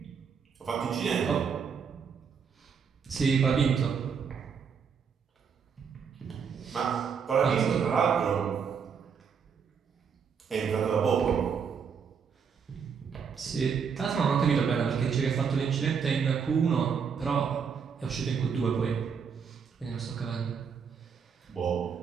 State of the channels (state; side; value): quieter; left; 6.5 dB